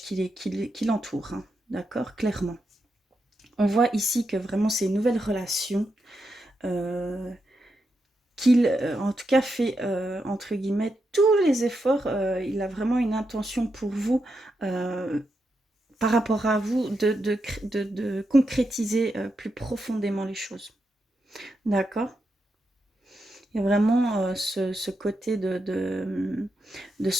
l'entourent, hein, d'accord, clairement. On voit ici que vraiment c'est une nouvelle relation euh, qu'il, en tout cas, fait, entre guillemets, tous les efforts. Il a vraiment une intention pour vous, par rapport à vous, de concrétiser plus profondément les choses. D'accord. Il y a vraiment ce côté de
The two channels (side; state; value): both; normal; correlation 0.85